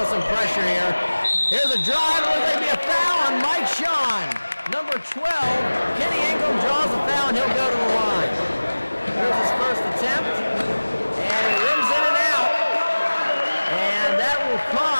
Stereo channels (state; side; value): inverted; both; correlation -1.00